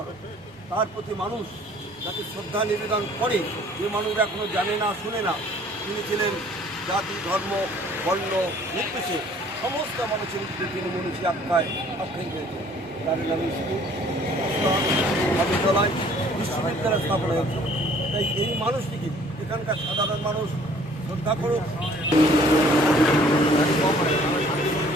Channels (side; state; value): both; normal; correlation 0.56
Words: তার প্রতি মানুষ যাতে শ্রদ্ধা নিবেদন করে, যে মানুষ এখনো জানে না, শুনে না, তিনি ছিলেন জাতি, ধর্ম, বর্ণ নির্বিশেষে সমস্ত মানুষের উপরে তিনি মনীষী আখ্যায়িত হয়েছেন। তার নামে স্কুল, বিদ্যালয়, বিশ্ববিদ্যালয় স্থাপন হয়েছে। তাই এই মানুষটিকে এখানকার সাধারণ মানুষ শ্রদ্ধা করুক।